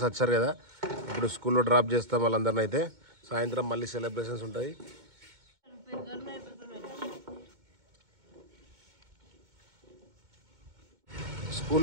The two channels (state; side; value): late; left; 2.2 ms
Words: వచ్చారు కదా, ఇప్పుడు స్కూల్లో డ్రాప్ చేస్తాం వాళ్ళందరినీ. అయితే సాయంత్రం మళ్ళీ సెలబ్రేషన్స్ ఉంటాయి.